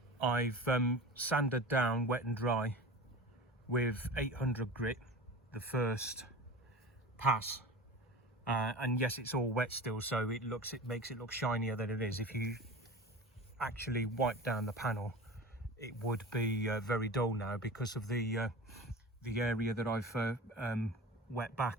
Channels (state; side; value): normal; both; correlation 0.33